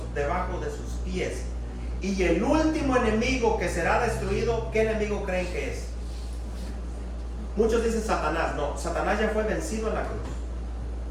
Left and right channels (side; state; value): both; identical; correlation 1.00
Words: debajo de sus pies. Y el último enemigo que será destruido, ¿qué enemigo creen que es? Muchos dicen Satanás. No, Satanás ya fue vencido en la cruz.